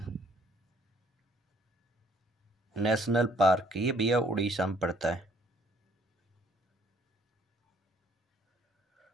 नेशनल पार्क, ये भैया उड़ीसा में पड़ता है,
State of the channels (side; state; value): both; normal; correlation 0.62